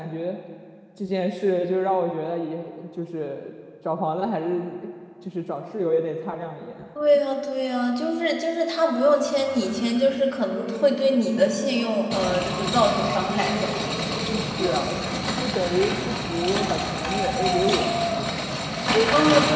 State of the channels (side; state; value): both; identical; correlation 1.00